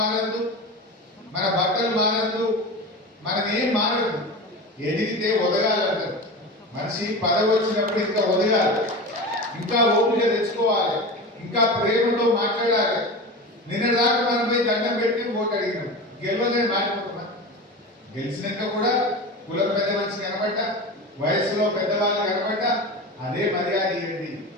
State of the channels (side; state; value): both; normal; correlation 0.28